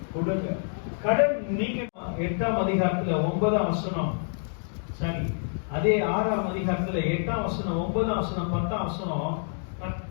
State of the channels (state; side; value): silent; right; digital silence